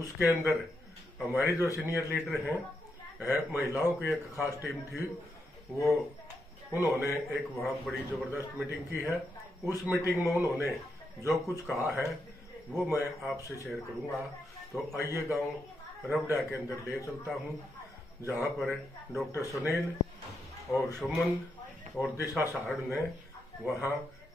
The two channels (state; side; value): normal; both; correlation 0.83